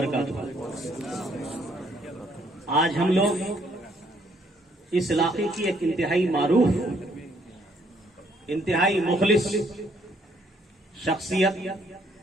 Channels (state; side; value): normal; both; correlation 0.68